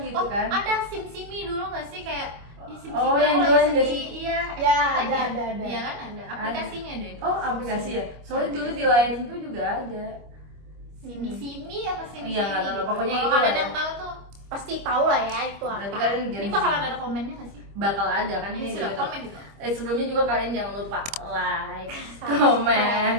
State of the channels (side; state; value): left; late; 25 ms